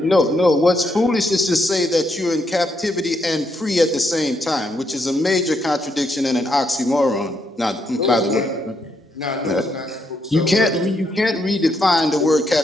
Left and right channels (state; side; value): normal; both; correlation 0.77